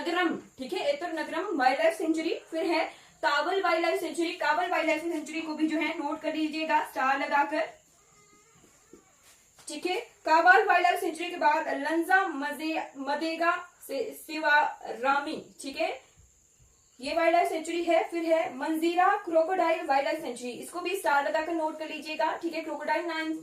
ठीक है। एतुर नगरम वाइल्ड लाइफ सेंचुरी, फिर है काबल वाइल्ड लाइफ सेंचुरी। काबल वाइल्ड लाइफ सेंचुरी को भी जो है नोट कर लीजिएगा स्टार लगाकर, ठीक है। काबल वाइल्ड लाइफ सेंचुरी के बाद लंजा मदेगा सिवारामी, ठीक है, ये वाइल्ड लाइफ सेंचुरी है। फिर है मंजीरा क्रोकोडाइल वाइल्ड लाइफ सेंचुरी, इसको भी स्टार लगाकर नोट कर लीजिएगा, ठीक है। क्रोकोडाइल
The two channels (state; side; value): identical; both; correlation 1.00